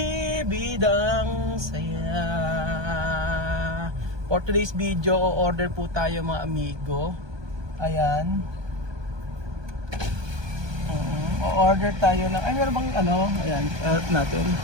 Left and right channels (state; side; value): late; left; 1.2 ms